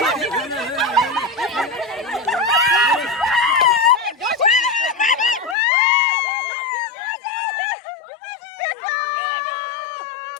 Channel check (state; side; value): drops out; right; at 5.6 s